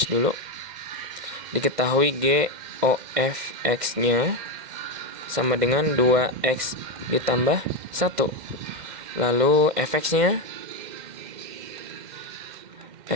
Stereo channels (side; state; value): left; late; 2.1 ms